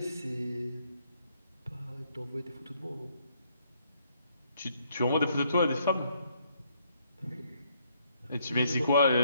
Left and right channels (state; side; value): inverted; both; correlation -0.70